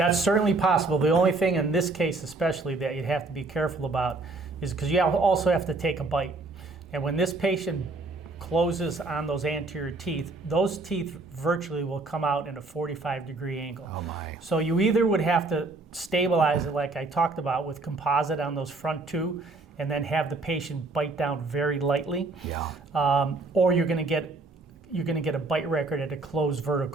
certainly possible. The only thing in this case especially that you'd have to be careful about is because you also have to take a bite. And when this patient closes on those anterior teeth, those teeth virtually will come out in a 45-degree angle. Oh my. So you either would have to stabilize it like I talked about with composite on those front two, and then have the patient bite down very lightly, or you're going to get a bite record at a closed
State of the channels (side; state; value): left; quieter; 3.4 dB